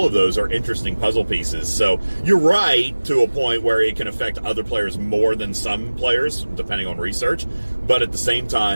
of those are interesting puzzle pieces. So you're right to a point where it can affect other players more than some players, depending on research, but at the same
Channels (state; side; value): inverted; both; correlation -1.00